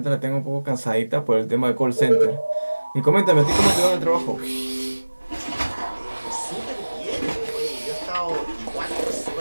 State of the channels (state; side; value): inverted; both; correlation -1.00